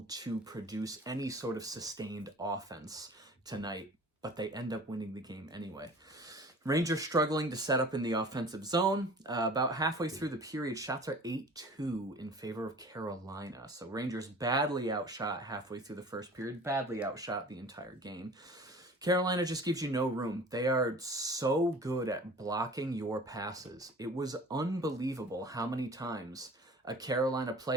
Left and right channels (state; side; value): normal; both; correlation 0.44